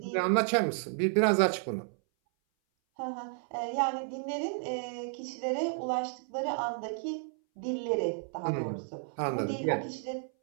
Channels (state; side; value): silent; left; 56 dB below the other